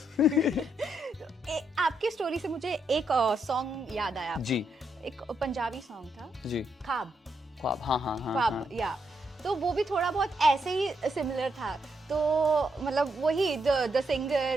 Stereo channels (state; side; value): normal; both; correlation 0.79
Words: आपकी स्टोरी से मुझे एक सॉन्ग याद आया जी। एक पंजाबी सॉन्ग था जी, ख्वाब। ख्वाब, हाँ हाँ हाँ, ख्वाब, हाँ। या तो वो भी थोड़ा बहुत ऐसे ही सिमिलर था। तो मतलब वही द